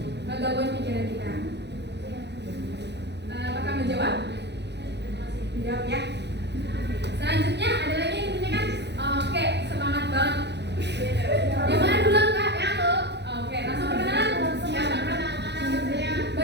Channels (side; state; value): left; late; 0.50 ms